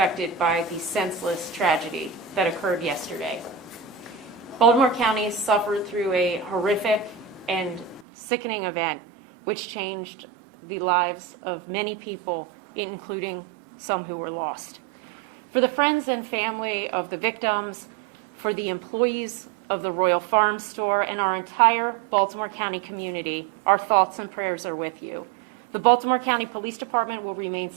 by the senseless tragedy that occurred yesterday. Baltimore County suffered through a horrific and sickening event which changed the lives of many people, including some who were lost. For the friends and family of the victims, for the employees of the Royal Farm Store, and our entire Baltimore County community, our thoughts and prayers are with you. The Baltimore County Police Department will remain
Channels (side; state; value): left; drops out; at 8.1 s